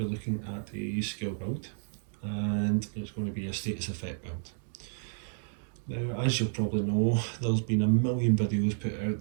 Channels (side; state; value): left; silent; digital silence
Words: be looking at a skill build, and it's going to be a status effect build. Now, as you'll probably know, there's been a million videos put